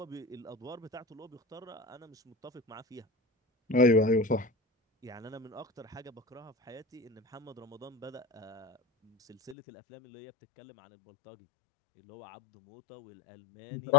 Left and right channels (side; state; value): right; drops out; at 9.6 s